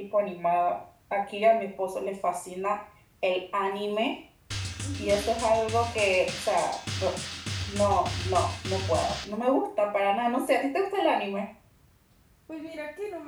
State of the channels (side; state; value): both; identical; correlation 1.00